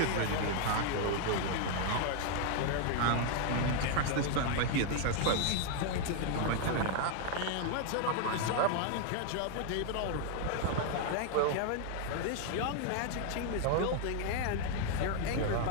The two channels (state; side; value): different; both; correlation 0.00